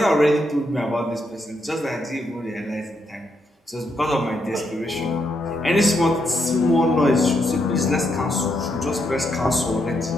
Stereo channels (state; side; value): normal; both; correlation 0.79